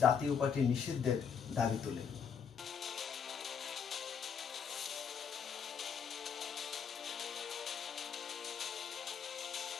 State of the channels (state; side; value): quieter; right; 6.9 dB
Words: জাতীয় পার্টি নিষিদ্ধের দাবি তোলে।